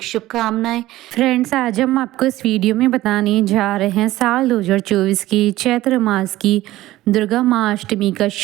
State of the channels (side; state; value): left; quieter; 16.1 dB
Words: शुभकामनाएं। फ्रेंड्स, आज हम आपको इस वीडियो में बताने जा रहे हैं साल 2024 की चैत्र मास की दुर्गा माँ अष्टमी का